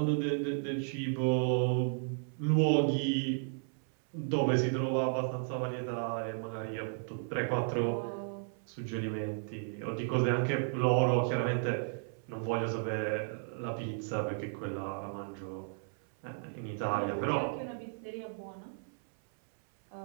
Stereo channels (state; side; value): silent; left; 55 dB below the other